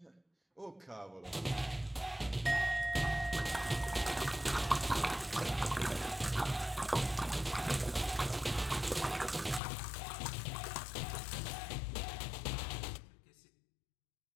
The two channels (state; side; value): drops out; right; at 9.6 s